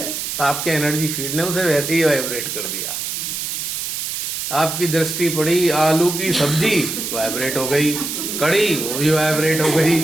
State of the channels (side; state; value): right; noise; hiss, 4 dB below the sound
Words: तो आपके एनर्जी फील्ड ने उसे वैसे ही वाइब्रेट कर दिया। आपकी दृष्टि पड़ी आलू की सब्जी, वाइब्रेट हो गई, कड़ी वो भी वाइब्रेट हो गई।